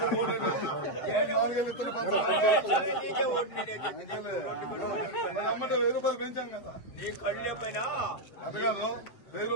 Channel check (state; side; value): late; right; 7.9 ms